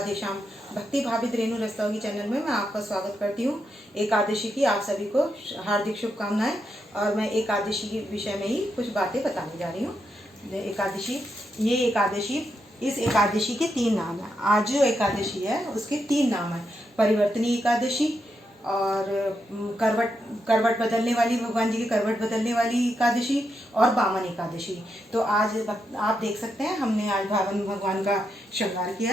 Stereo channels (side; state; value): both; normal; correlation 0.83